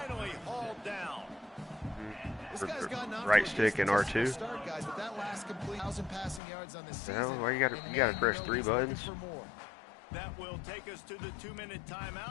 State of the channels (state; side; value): drops out; right; at 6.4 s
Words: hauled down. Right stick and R2. Start, guys, but that last complete 1,000 passing yards on the season. Well, why you gotta press 3 buttons? That will take us to the 2-minute